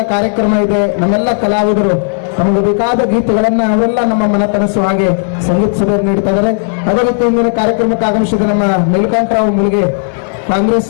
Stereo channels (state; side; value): silent; right; digital silence